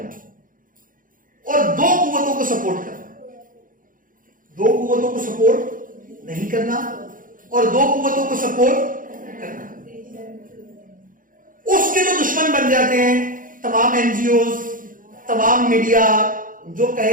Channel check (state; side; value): late; left; 0.40 ms